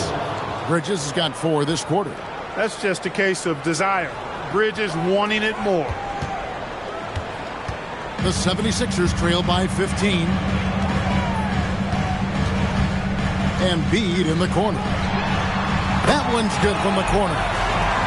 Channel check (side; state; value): both; identical; correlation 1.00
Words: Bridges has got 4 this quarter. That's just a case of desire. Bridges wanting it more. The 76ers trail by 15. Embiid in the corner. That one's good from the corner.